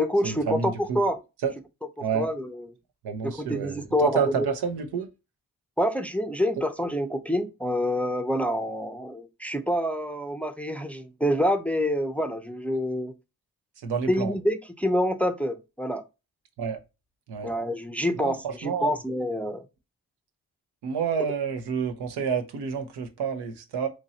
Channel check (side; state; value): both; normal; correlation 0.58